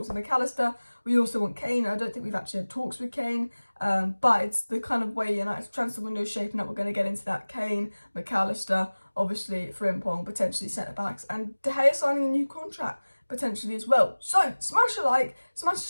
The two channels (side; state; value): both; inverted; correlation -1.00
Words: with McAllister. We also want Kane. I don't think we've actually had talks with Kane, but it's the kind of way United's transfer window is shaping up. We're going to get into that. Kane, McAllister, obviously Frimpong, potentially centre-backs, and De Gea signing a new contract, potentially as well. So smash a like, smash a